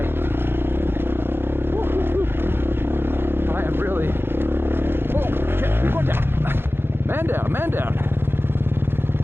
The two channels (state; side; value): late; left; 0.11 ms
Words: Woo-hoo-hoo. I am really. Oh shit, we're going down. Man down, man down.